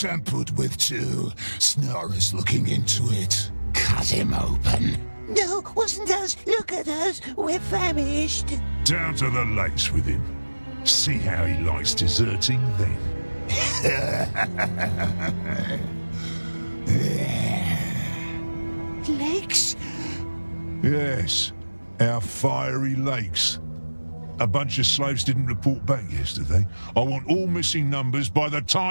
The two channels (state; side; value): inverted; both; correlation -1.00